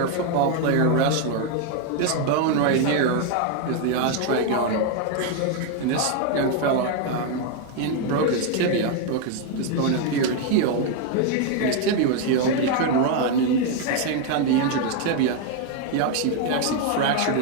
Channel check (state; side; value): different; both; correlation 0.01